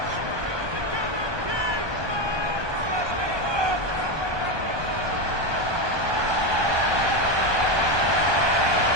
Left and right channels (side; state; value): left; late; 1.2 ms